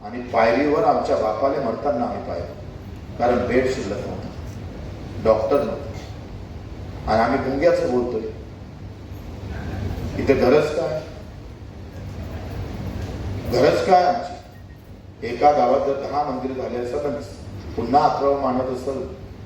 आणि पायरीवर आमच्या बापाला मरताना आम्ही पाहिलं, कारण बेड शिल्लक नव्हता, डॉक्टर नव्हता आणि आम्ही गुंग्याचं बोलतोय. इथे गरज काय आमची. एका गावात जर 10 मंदिर झाले असेल, पुन्हा 11 मानत असेल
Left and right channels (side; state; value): both; identical; correlation 1.00